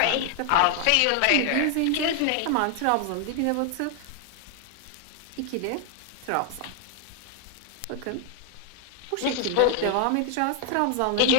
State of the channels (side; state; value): both; different; correlation 0.00